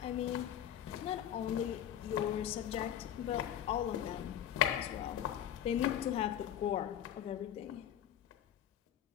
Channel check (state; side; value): quieter; right; 10.5 dB